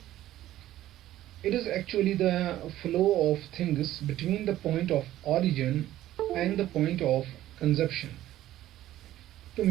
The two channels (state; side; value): quieter; left; 13.9 dB